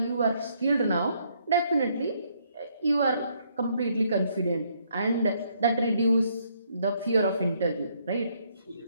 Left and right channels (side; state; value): both; inverted; correlation -0.70